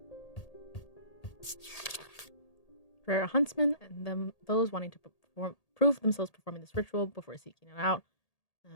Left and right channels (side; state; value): right; late; 1.8 ms